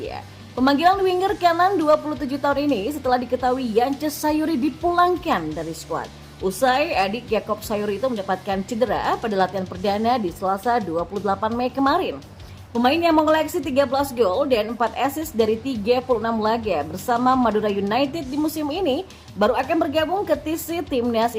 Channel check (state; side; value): identical; both; correlation 1.00